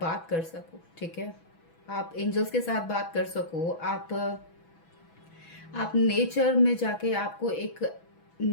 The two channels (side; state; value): right; late; 6.1 ms